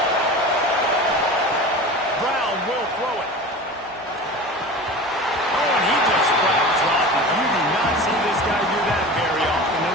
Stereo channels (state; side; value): normal; both; correlation 0.34